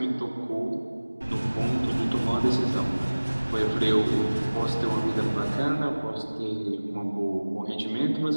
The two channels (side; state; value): both; inverted; correlation -1.00